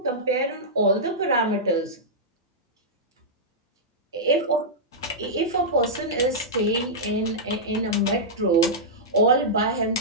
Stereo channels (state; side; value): normal; both; correlation -0.11